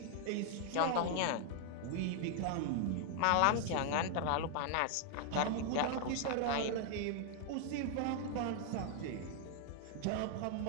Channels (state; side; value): different; both; correlation 0.00